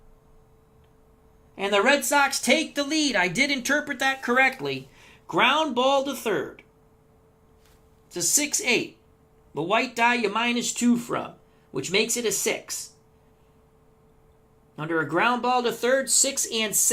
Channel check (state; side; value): identical; both; correlation 1.00